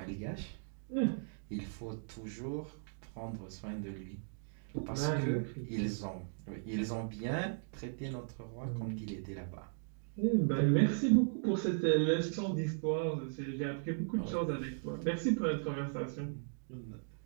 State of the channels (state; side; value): silent; left; digital silence